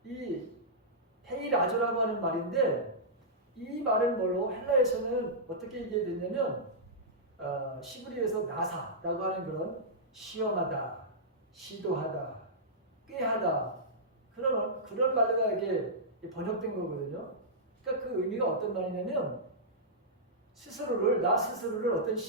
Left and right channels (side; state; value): both; normal; correlation -0.13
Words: 이 헤이라조라고 하는 말인데, 이 말은 뭘로 헬라에서는 어떻게 얘기했냐면 시브리에서 나사라고 하는 그런 시험하다, 시도하다, 꾀하다 그런 말로가 이게 번역된 거거든요. 그러니까 그 의미가 어떤 말이냐면 나 스스로를 어떤